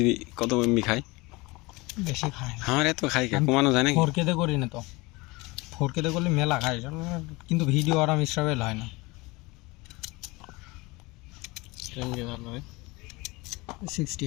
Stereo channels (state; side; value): quieter; right; 23.7 dB